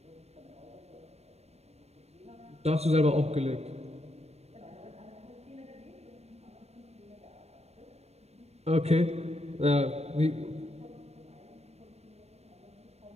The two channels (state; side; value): late; left; 0.31 ms